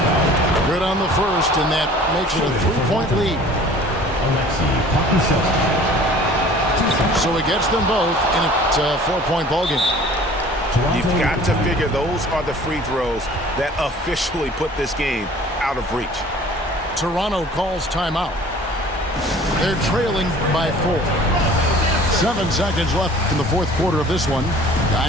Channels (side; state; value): both; normal; correlation 0.48